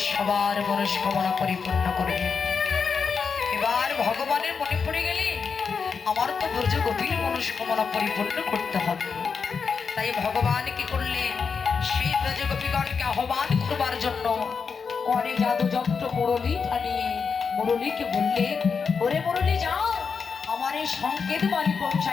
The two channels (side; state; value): right; quieter; 5.7 dB